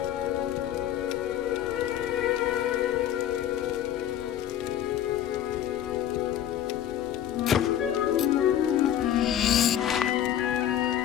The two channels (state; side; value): quieter; right; 10.9 dB